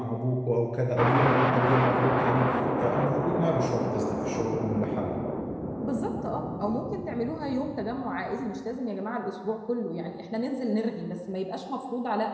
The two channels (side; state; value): both; identical; correlation 1.00